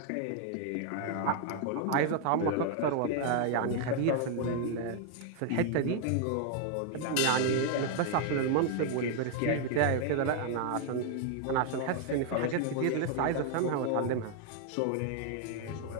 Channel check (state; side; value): different; both; correlation 0.00